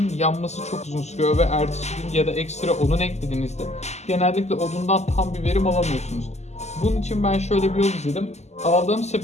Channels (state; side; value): late; right; 0.33 ms